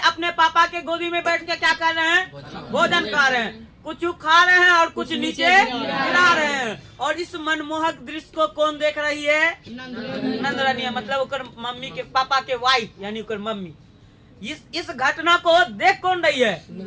पापा के गोदी में बैठ के क्या कर रहे हैं? भोजन कर रहे हैं। कुछ खा रहे हैं और कुछ नीचे गिरा रहे हैं। और इस मनमोहक दृश्य को कौन देख रही है? नंद रानिया, मतलब उकर मम्मी के, पापा के वाइफ यानी उकर मम्मी। इस घटना को देख कौन रही है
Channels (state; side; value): identical; both; correlation 1.00